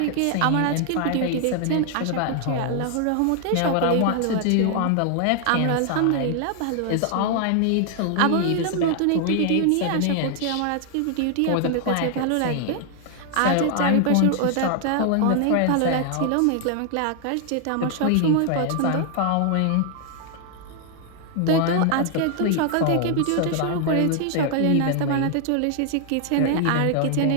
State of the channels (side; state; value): both; different; correlation 0.00